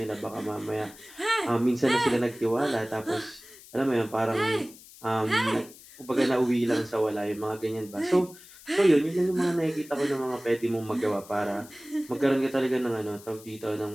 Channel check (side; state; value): left; noise; hiss, 20 dB below the sound